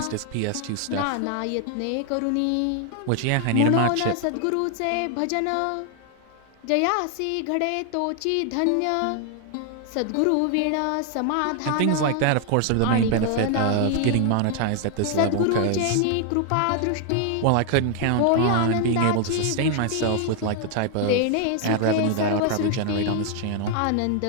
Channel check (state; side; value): different; both; correlation 0.00